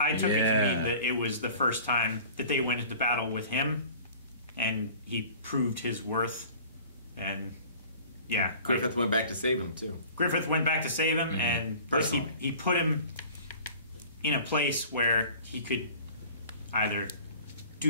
took it to mean that it was the first time that they went into battle with him, and he proved his worth. And yeah, Griffith went back to save him too. Griffith went back to save him, and Personally. he put him in a place where he could either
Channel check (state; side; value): inverted; both; correlation -0.45